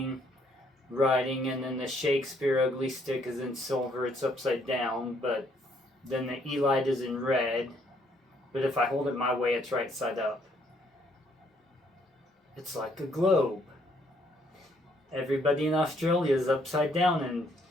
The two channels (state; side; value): normal; both; correlation 0.68